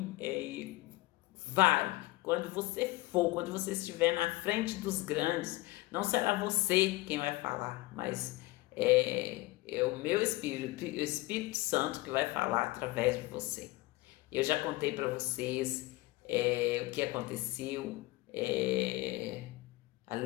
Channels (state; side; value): quieter; right; 20.2 dB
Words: vai, quando você estiver na frente dos grandes, não será você quem vai falar, mas é o meu Espírito, o Espírito Santo que vai falar através de você. Eu já contei para vocês o que aconteceu